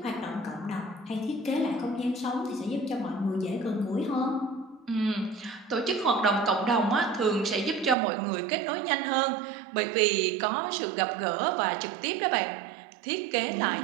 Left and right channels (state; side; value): drops out; left; at 8.0 s